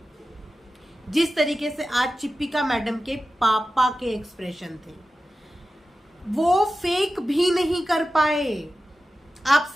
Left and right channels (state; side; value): normal; both; correlation 0.94